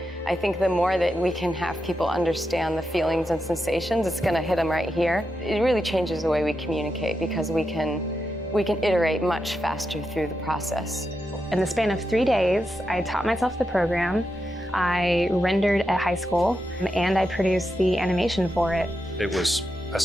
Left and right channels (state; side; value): normal; both; correlation 0.86